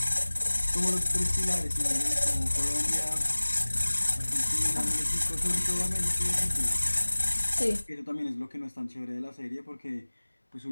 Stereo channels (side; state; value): both; inverted; correlation -1.00